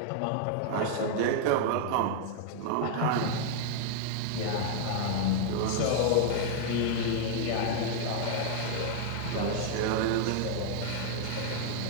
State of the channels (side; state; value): both; different; correlation 0.00